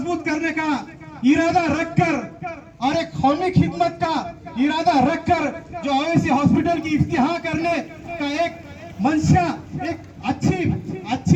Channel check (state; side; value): identical; both; correlation 1.00